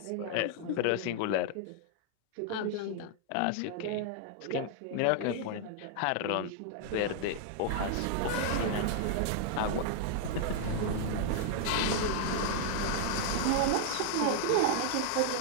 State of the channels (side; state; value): both; different; correlation 0.00